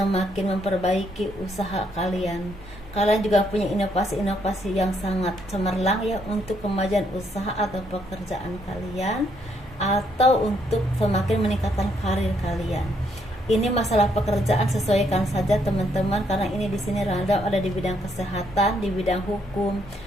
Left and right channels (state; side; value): normal; both; correlation 0.72